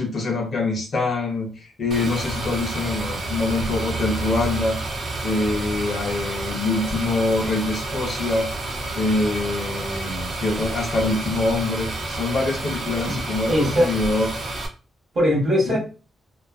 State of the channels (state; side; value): normal; both; correlation 0.71